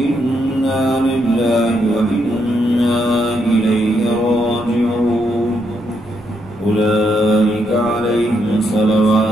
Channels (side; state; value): both; normal; correlation 0.78